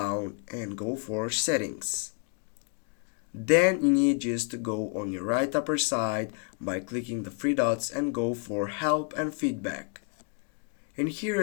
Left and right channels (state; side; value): quieter; right; 38.2 dB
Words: and go for settings. Then you need just to go on your right upper side by clicking the three dots and go for help and feedback. And here,